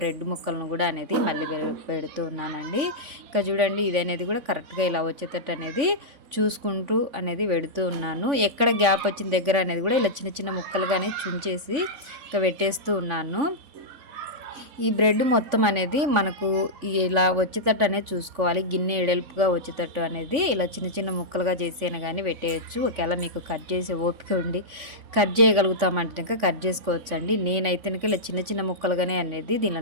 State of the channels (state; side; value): late; left; 3.5 ms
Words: ముక్కలను కూడా అనేది మళ్ళీ పెడుతూ ఉన్నానండి. ఇక చూడండి ఇది అనేది కూడా కరెక్ట్గా ఇలా వచ్చేటట్టు అనేది చూసుకుంటూ అనేది పెడుతూ ఉన్నాను. ఎక్కడ గ్యాప్ వచ్చిన దగ్గర అనేది కూడా ఇలా చిన్న చిన్న ముక్కలుగానే చుంచేసి ఇక పెట్టేస్తూ ఉన్నాను. ఈ బ్రెడ్ మొత్తం అనేది మనకు ఇలా వచ్చేటట్టు అనేది చూసుకోవాలి. గిన్నె ఎడల్పుగా వచ్చేటట్టు అనేది ఇలా చిన్న చిన్న ముక్కలుగా చేసేనా కానీ పెట్టేయచ్చు. ఒకవేళ మీకు కట్ చేసే ఓపిక ఉండి కట్ చేయగలుగుతామంటే కట్ చేసుకోవచ్చు అండి. నేనైతే ఇలా చిన్న చిన్న ముక్కలుగానే అనేది